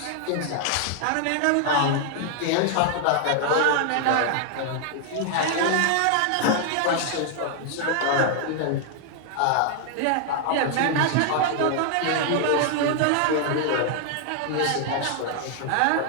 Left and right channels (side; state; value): both; different; correlation 0.00